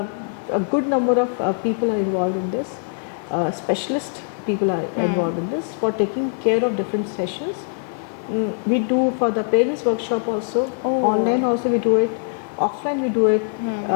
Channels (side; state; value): right; silent; 64 dB below the other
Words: good number of people are involved in this. Specialist people are involved in this for taking care of different sessions. We do for the parents workshop also. Online also we do it. Offline भी do it.